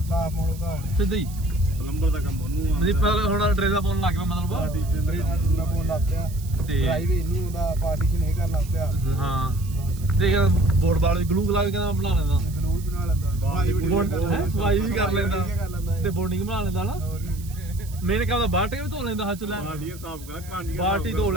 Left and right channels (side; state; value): right; noise; hiss, 19 dB below the sound